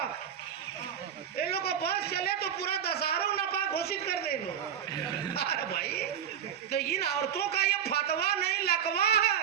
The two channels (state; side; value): quieter; left; 8.7 dB